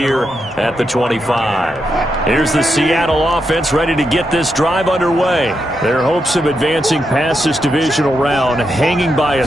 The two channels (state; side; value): normal; both; correlation 0.84